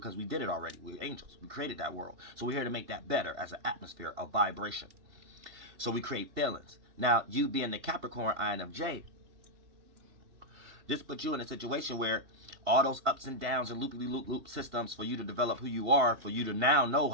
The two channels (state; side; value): late; left; 2.8 ms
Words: we did it already. We're angels. We created that world. So we're here to make that better as an atmosphere of vibration. So we create feelings. Now, you being the Capricorn INFJ, this puts you in a situation where all those ups and downs and loop systems for you to develop who you are, for you to now know